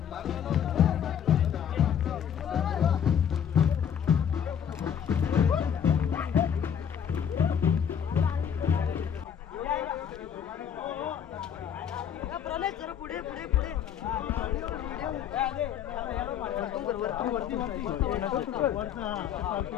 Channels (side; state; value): right; quieter; 8.5 dB